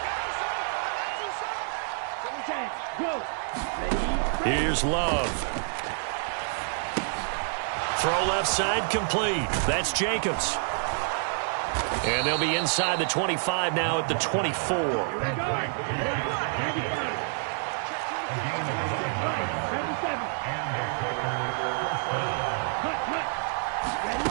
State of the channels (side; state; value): left; silent; 59 dB below the other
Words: Here's Love. Throw left side complete. That's Jacobs. And they'll be inside the 25 now at the 24.